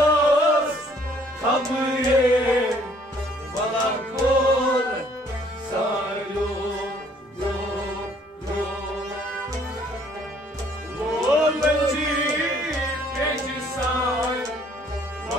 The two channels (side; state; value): both; normal; correlation 0.61